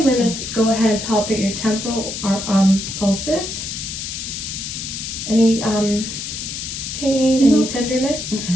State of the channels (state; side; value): noise; left; hiss, 6 dB below the sound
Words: going to go ahead and palpate your temporal pulses. Any pain, any tenderness?